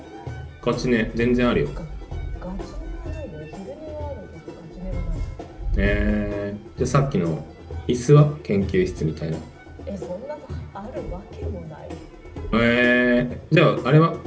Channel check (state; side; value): identical; both; correlation 1.00